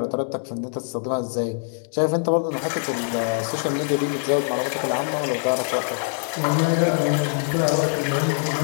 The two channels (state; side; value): silent; right; digital silence